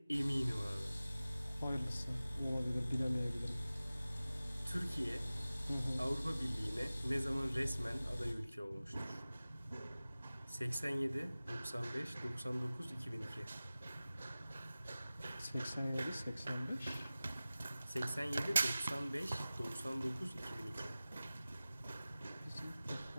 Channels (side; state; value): both; inverted; correlation -0.97